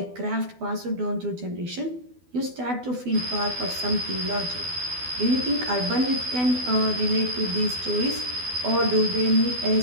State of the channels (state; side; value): late; left; 12 ms